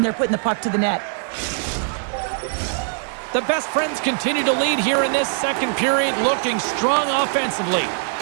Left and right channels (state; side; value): silent; left; digital silence